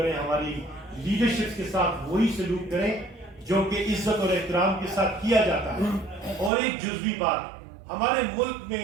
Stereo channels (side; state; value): left; drops out; at 6.5 s